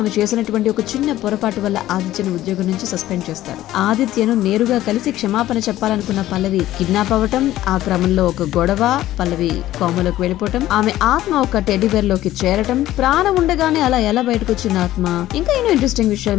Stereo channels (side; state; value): right; quieter; 14.4 dB